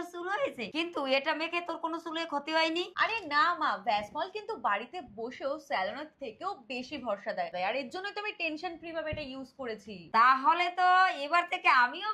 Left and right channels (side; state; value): both; identical; correlation 1.00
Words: চুল হয়েছে, কিন্তু এটা মেখে তোর কোনো চুলে ক্ষতি হয়নি? আরে না মা, ভ্যাসমল কিন্তু বাড়িতে বসেও স্যালনের থেকেও বেশি ভরসা দেয়, আর এর জন্য তো আমি টেনশন ফ্রি ভাবে এটা ইউজ করেছি। তাহলে তো এবার থেকে আমিও